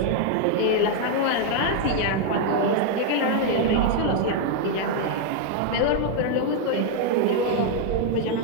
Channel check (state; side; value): different; both; correlation 0.00